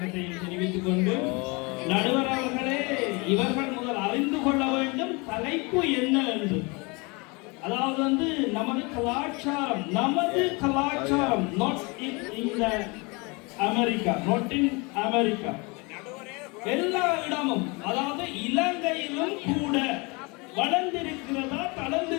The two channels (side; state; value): right; quieter; 28.1 dB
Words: தெரிவித்துக் கொண்டு, நடுவர் அவர்களே, இவர்கள் முதல் அறிந்து கொள்ள வேண்டும் தலைப்பு என்ன என்று. அதாவது வந்து நமது கலாச்சாரம் not in America, not in America, எல்லா இடமும், அதாவது இலங்கையிலும் கூட வளர்ந்திருக்கிறதா